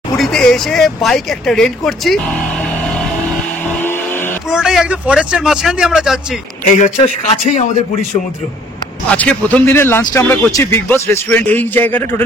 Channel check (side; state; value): both; normal; correlation 0.58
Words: পুরীতে এসে বাইক একটা রেন্ট করছি, পুরোটাই একদম ফরেস্টের মাঝখান দিয়ে আমরা যাচ্ছি। এই হচ্ছে কাছেই আমাদের পুরীর সমুদ্র। আজকে প্রথম দিনের লাঞ্চটা আমরা করছি বিগ বস রেস্টুরেন্ট। এই জায়গাটা